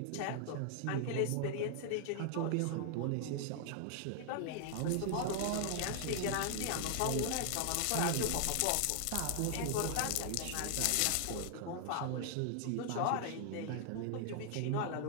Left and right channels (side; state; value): both; different; correlation 0.00